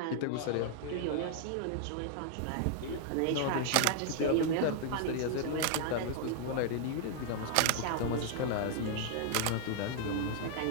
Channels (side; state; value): both; different; correlation 0.00